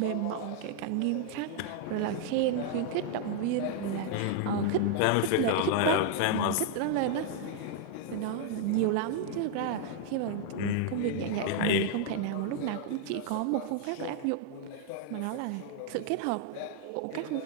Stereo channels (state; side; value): different; both; correlation 0.00